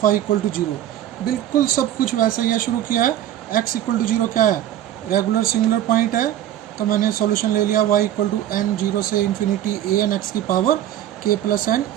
y equal to 0. बिल्कुल सब कुछ वैसे ही है. शुरू किया है x इक्वल टू 0 क्या है, रेगुलर सिंगुलर पॉइंट है, तो मैंने सॉल्यूशन ले लिया y इक्वल टू n 0 से इन्फिनिटी a n x की power k plus n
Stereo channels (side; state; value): left; quieter; 12.0 dB